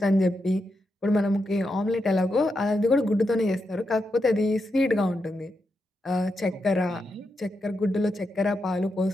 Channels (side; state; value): both; normal; correlation 0.85